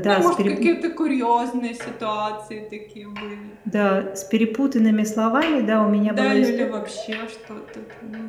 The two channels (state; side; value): identical; both; correlation 1.00